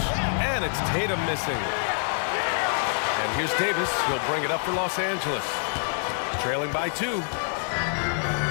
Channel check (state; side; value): silent; right; 61 dB below the other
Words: And it's Tatum missing. And here's Davis. He'll bring it up for Los Angeles. Trailing by 2.